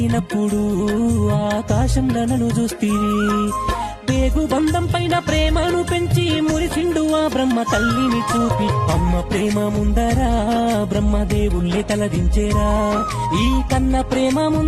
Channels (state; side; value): identical; both; correlation 1.00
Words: ఆకాశంలో నన్ను చూస్తీవి పేగు బంధం పైన ప్రేమను పెంచి మురిసిండు ఆ బ్రహ్మ తల్లిని చూపి అమ్మ ప్రేమ ముందరా బ్రహ్మదేవుళ్ళే తలదించేరా ఈ కన్న ప్రేమ